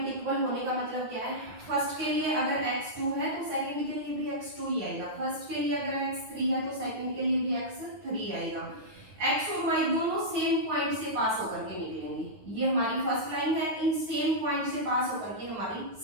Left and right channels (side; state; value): left; late; 9.6 ms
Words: इक्वल होने का मतलब क्या है, फर्स्ट के लिए अगर x2 है तो सेकंड के लिए भी x2 ही आएगा, फर्स्ट के लिए अगर x3 है तो सेकंड के लिए भी x3 आएगा। x और y दोनों सेम पॉइंट से पास होकर के निकलेंगे। ये हमारी फर्स्ट लाइन है, इन सेम पॉइंट से पास होकर के हमारी